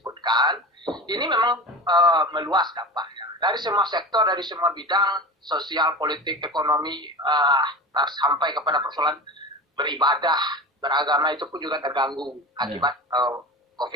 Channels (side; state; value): both; normal; correlation 0.31